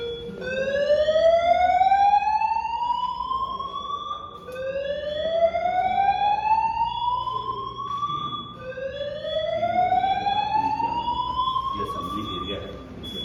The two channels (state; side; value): identical; both; correlation 1.00